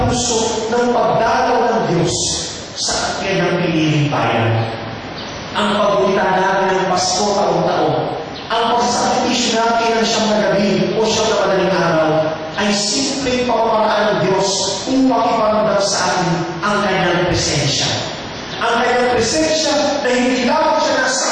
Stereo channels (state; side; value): identical; both; correlation 1.00